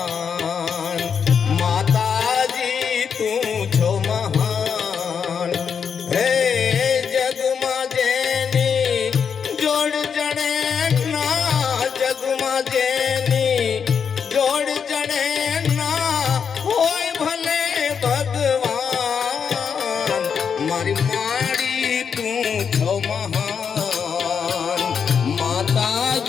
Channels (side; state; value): right; quieter; 6.8 dB